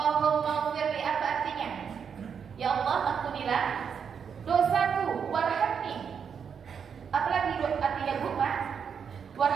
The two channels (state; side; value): quieter; left; 7.0 dB